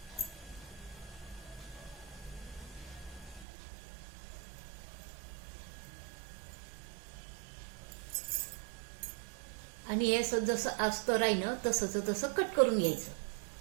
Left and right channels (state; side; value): drops out; left; at 3.5 s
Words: आणि हे जसं अस्तर आहे ना तसं कट करून घ्यायचं.